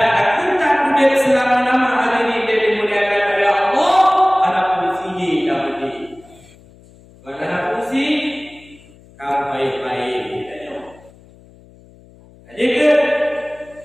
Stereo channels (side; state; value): left; noise; hum, 25 dB below the sound